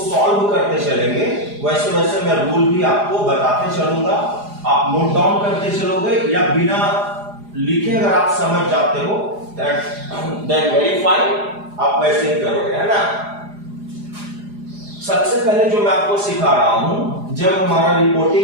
करते चलेंगे वैसे वैसे मैं रूल भी आपको बताते चलूंगा। आप नोट डाउन करते चलोगे या बिना लिखे अगर आप समझ जाते हो देन वेरी फाइन, आप वैसे ही करोगे, है ना। सबसे पहले जो मैं आपको सिखा रहा हूं, जब हमारा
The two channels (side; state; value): left; late; 4.9 ms